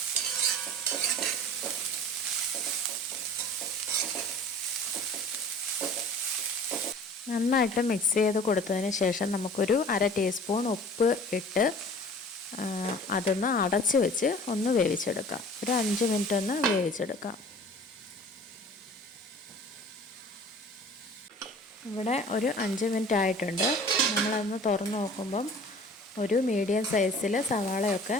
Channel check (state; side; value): normal; both; correlation 0.45